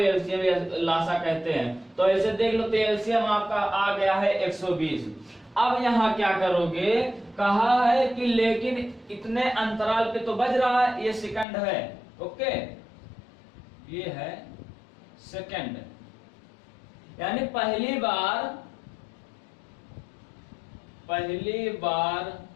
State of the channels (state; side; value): drops out; right; at 11.5 s